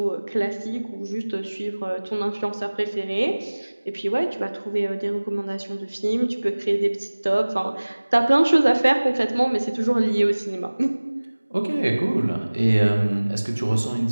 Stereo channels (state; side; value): inverted; both; correlation -1.00